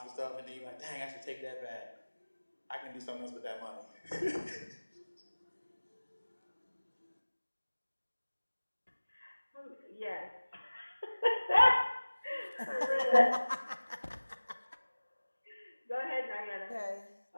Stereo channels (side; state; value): both; inverted; correlation -1.00